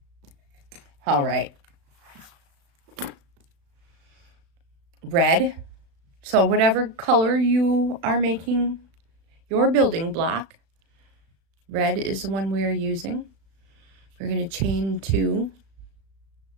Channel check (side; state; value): left; late; 36 ms